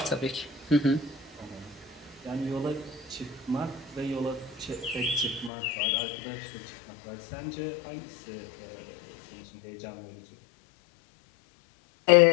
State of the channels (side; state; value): right; drops out; at 5.5 s